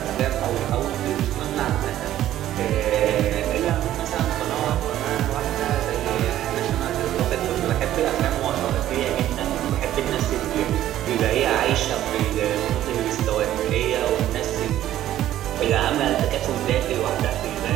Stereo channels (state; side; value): quieter; left; 12.8 dB